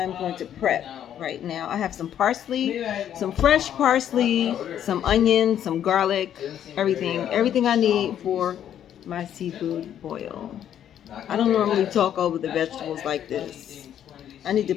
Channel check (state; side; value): quieter; right; 10.1 dB